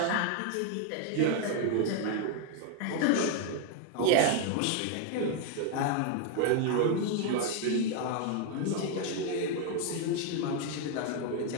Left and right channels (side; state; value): both; different; correlation 0.01